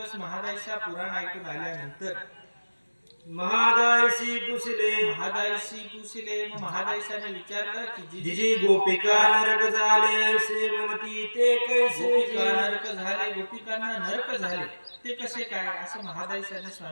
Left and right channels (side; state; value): both; inverted; correlation -1.00